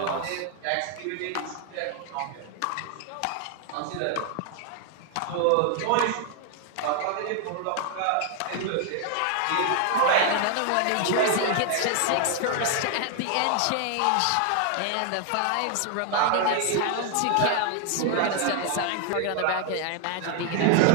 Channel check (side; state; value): both; different; correlation 0.00